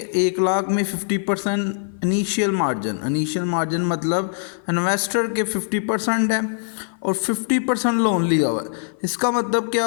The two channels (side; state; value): right; silent; 55 dB below the other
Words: 1 लाख में 50% इनिशियल मार्जिन मतलब इन्वेस्टर के 50% है और 50% लोन लिया हुआ है। इसका मतलब क्या